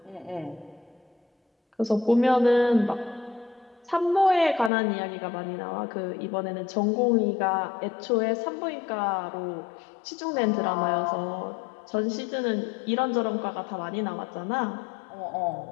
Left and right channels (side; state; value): right; drops out; at 4.7 s